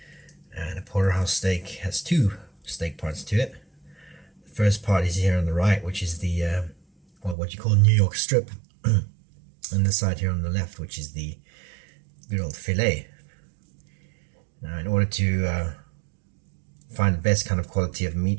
and a porterhouse steak has two steak parts to it. The first part is here on the right, which is the what you call New York strip, and the side here on the left, which is the good old fillet. Now, in order to find the best kind of quality of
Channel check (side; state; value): left; drops out; at 7.4 s